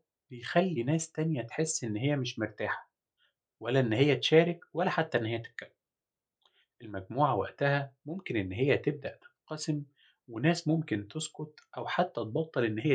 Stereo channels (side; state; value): both; identical; correlation 1.00